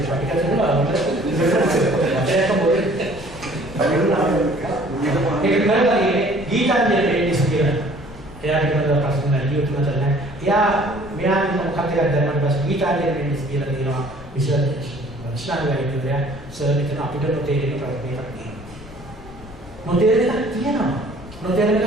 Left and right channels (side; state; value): left; noise; rumble, 17 dB below the sound